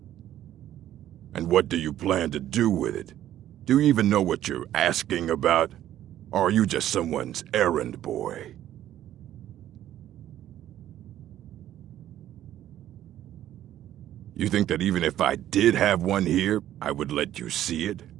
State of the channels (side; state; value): left; quieter; 12.3 dB